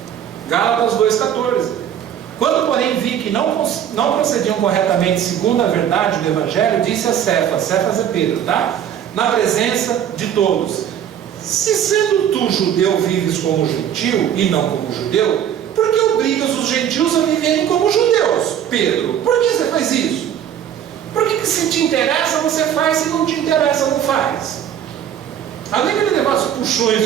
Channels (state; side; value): quieter; left; 9.6 dB